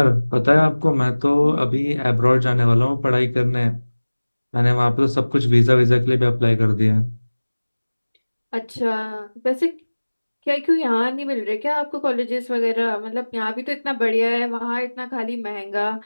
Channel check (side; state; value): both; inverted; correlation -1.00